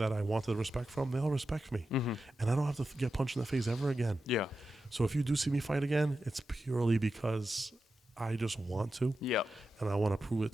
I wanted respect from, they all respect me. And I don't have to get punched in the face ever again. So if you do see me fight again, it's purely because I just want to. And I want to prove it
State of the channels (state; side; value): normal; both; correlation 0.91